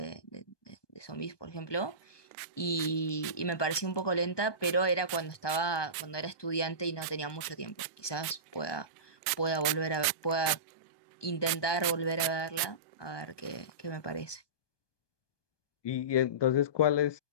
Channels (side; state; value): right; late; 1.2 ms